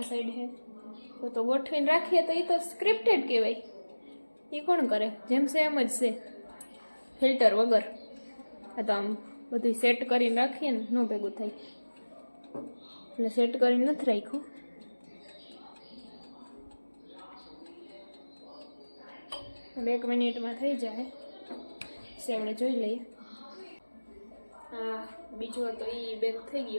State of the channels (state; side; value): inverted; both; correlation -1.00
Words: સાઈડ હે તો ગોઠવીને રાખીએ તો એ તો સ્ક્રિપ્ટેડ કહેવાય. એ કોણ કરે? જેમ છે એમ જ છે, ફિલ્ટર વગર. આ તો આમ બધું સેટ કરીને રાખીએ ને ન ભેગું થાય એટલે સેટ કરીને નથી રાખ્યું. હવે 1 મિનિટમાં થઈ જાય છે, આપણે જોઈ લઈએ. હા બીજો હતો એ બેક થઈ